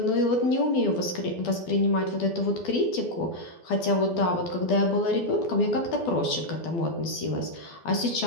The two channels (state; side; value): late; right; 12 ms